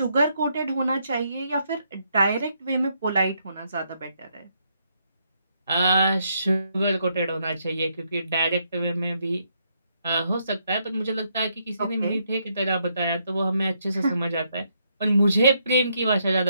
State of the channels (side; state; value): both; inverted; correlation -0.76